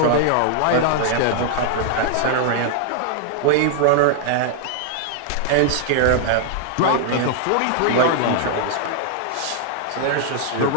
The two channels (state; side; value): different; both; correlation -0.01